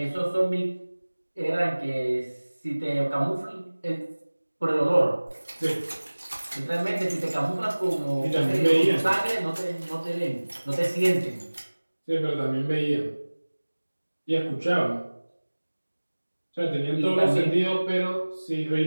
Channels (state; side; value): inverted; both; correlation -1.00